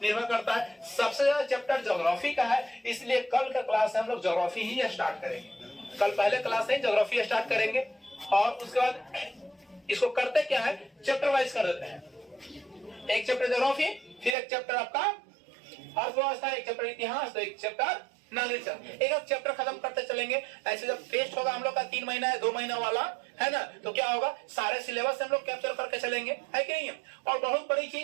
निर्भर करता है। सबसे ज्यादा चैप्टर ज्योग्राफी का है, इसलिए कल का क्लास हम लोग ज्योग्राफी ही स्टार्ट करेंगे। कल पहले क्लास से ज्योग्राफी स्टार्ट करेंगे, और उसके बाद इसको करते क्या है, चैप्टर वाइज कर देते हैं। एक चैप्टर ज्योग्राफी, फिर एक चैप्टर आपका अर्थव्यवस्था, एक चैप्टर इतिहास, तो एक चैप्टर नागरिक शास्त्र। एक चैप्टर खत्म करते चलेंगे। ऐसे जब टेस्ट होगा हम लोग का 3 महीना या 2 महीना वाला, है ना, तो क्या होगा, सारे सिलेबस हम लोग कैप्चर करके चलेंगे, है कि नहीं है। और बहुत बड़ी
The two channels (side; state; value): left; drops out; at 14.4 s